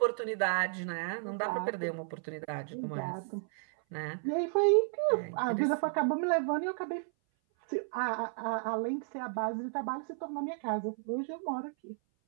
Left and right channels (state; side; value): silent; left; 56 dB below the other